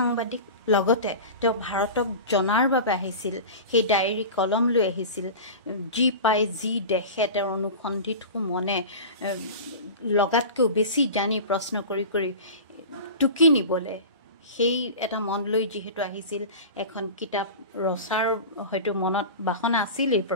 লগতে তেওঁ ভাৰতক জনাৰ বাবে আহিছিল, সেই ডায়েৰী কলম লৈ আহিছিল, যি পাই যি দেখে তেওঁৰ অনুসন্ধিৎসু মনে লগাতকৈও বেছি জানি প্ৰশ্ন কৰি কৰি টুকি নিবলৈ সেই এটা মন লৈ যিহেতু আহিছিল, এখন কিতাপ ৰচাৰ হয়তো মনত বাসনা আছিলেই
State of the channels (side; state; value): both; inverted; correlation -0.32